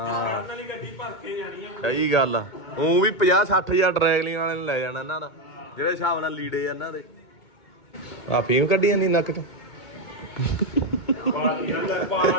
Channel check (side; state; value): right; late; 2.2 ms